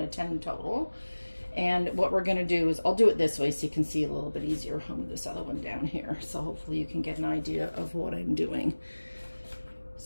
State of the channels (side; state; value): both; inverted; correlation -1.00